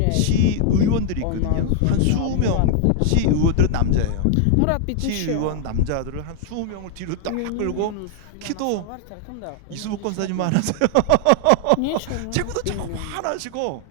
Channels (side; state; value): both; different; correlation 0.00